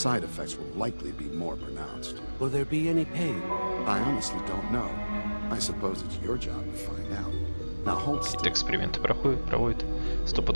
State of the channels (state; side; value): inverted; both; correlation -1.00